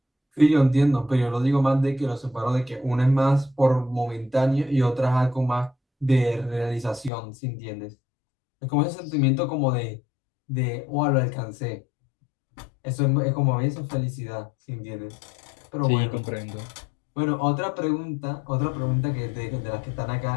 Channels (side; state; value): right; drops out; at 7.1 s